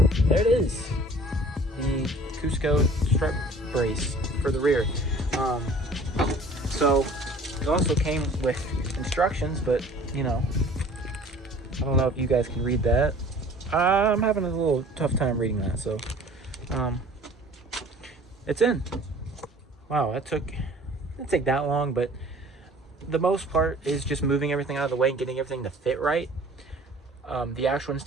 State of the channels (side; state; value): both; normal; correlation 0.49